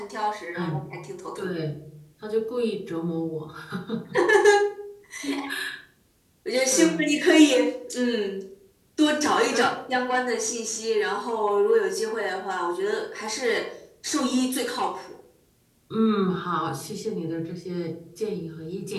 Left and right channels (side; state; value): both; identical; correlation 1.00